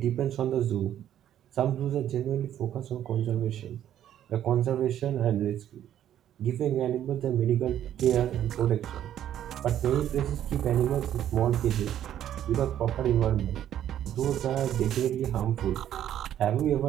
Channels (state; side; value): quieter; left; 11.0 dB